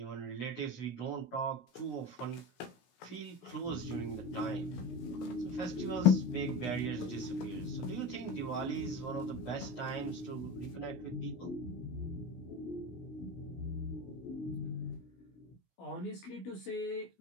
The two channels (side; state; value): right; late; 16 ms